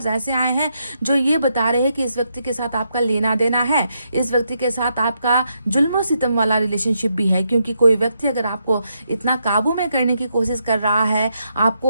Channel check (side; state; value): both; inverted; correlation -0.80